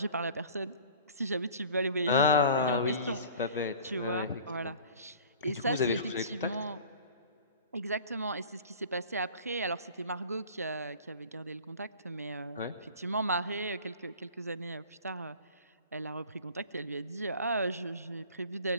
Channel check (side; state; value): both; inverted; correlation -0.44